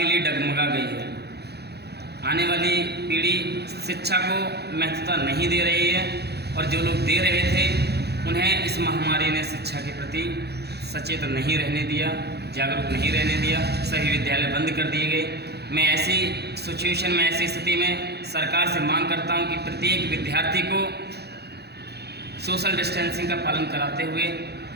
लिए डगमगा गई है। आने वाली पीढ़ी शिक्षा को महत्वता नहीं दे रही है और जो लोग दे रहे थे उन्हें इस महामारी ने शिक्षा के प्रति सचेत नहीं रहने दिया, जागरूक नहीं रहने दिया। सभी विद्यालय बंद कर दिए गए। मैं ऐसी सिचुएशन में, ऐसी स्थिति में सरकार से मांग करता हूं कि प्रत्येक विद्यार्थी को सोशल डिस्टेंसिंग का पालन कराते हुए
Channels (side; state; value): left; late; 0.48 ms